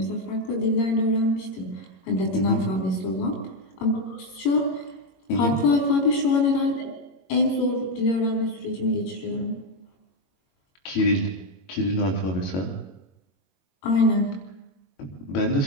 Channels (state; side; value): late; right; 22 ms